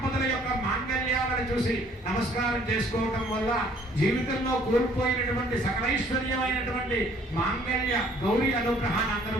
యొక్క మాంగళ్యాలను చూసి నమస్కారం చేసుకోవటం వల్ల జీవితంలో కోల్పోయినటువంటి సకలైశ్వర్యమైనటువంటి మాంగళ్య గౌరీ అనుగ్రహాన్ని అందరూ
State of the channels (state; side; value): normal; both; correlation 0.59